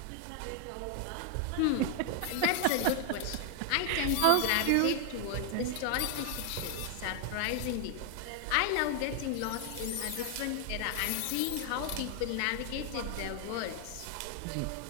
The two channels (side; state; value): both; different; correlation 0.00